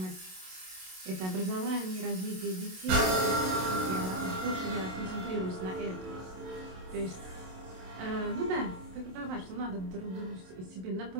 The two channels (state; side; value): late; left; 27 ms